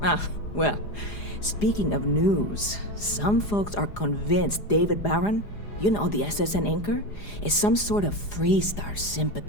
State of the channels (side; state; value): right; late; 4.9 ms